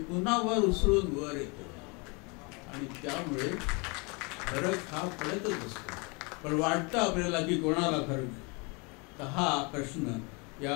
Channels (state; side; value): quieter; right; 30.5 dB